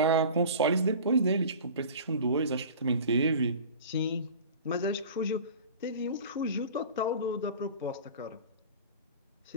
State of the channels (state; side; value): inverted; both; correlation -0.38